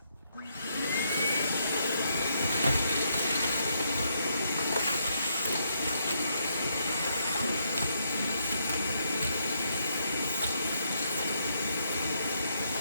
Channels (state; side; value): inverted; both; correlation -0.76